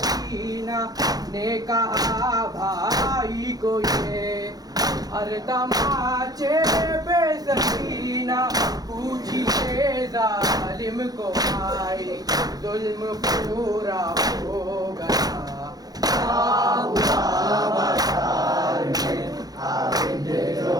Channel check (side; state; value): left; late; 0.19 ms